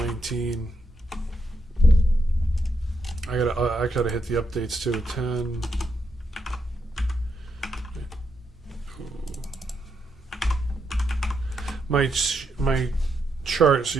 I gotta hit the updates too. 10. My chart, so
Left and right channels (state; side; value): normal; both; correlation 0.81